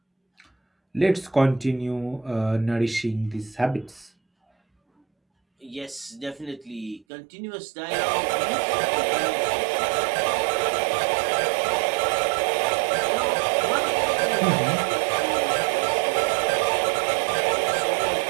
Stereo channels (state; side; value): drops out; left; at 7.1 s